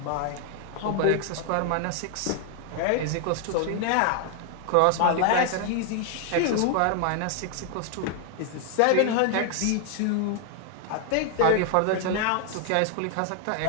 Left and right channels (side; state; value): both; different; correlation 0.00